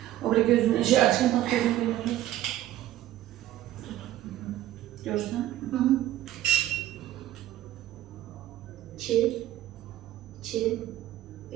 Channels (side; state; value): left; quieter; 13.7 dB